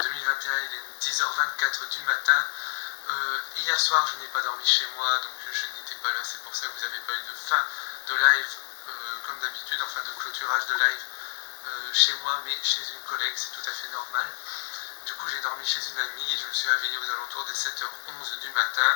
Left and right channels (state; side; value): silent; right; 59 dB below the other